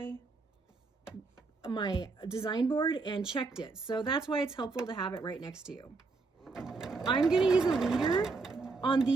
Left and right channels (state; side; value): quieter; left; 4.0 dB